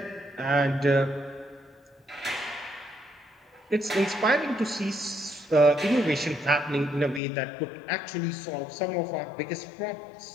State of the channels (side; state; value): right; drops out; at 7.2 s